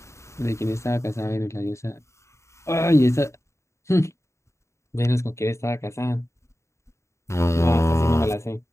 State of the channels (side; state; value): right; late; 0.14 ms